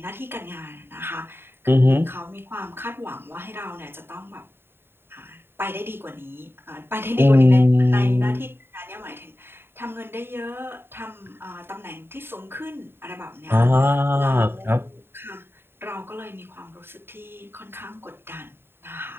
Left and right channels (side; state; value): left; late; 0.11 ms